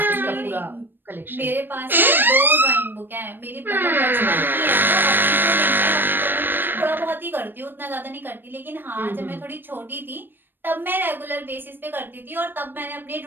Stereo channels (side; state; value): left; late; 0.095 ms